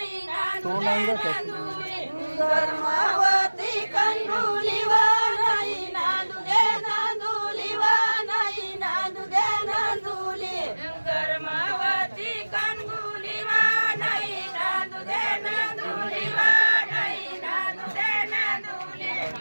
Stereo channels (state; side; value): inverted; both; correlation -1.00